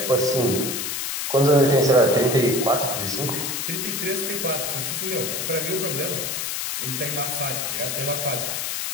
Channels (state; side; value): noise; left; hiss, 2 dB below the sound